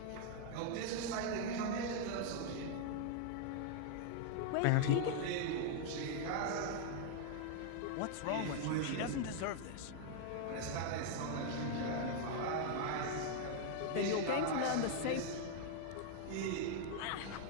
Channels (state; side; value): different; both; correlation 0.00